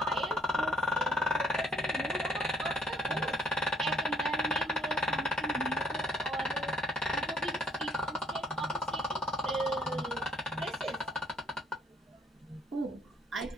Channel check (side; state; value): both; normal; correlation 0.62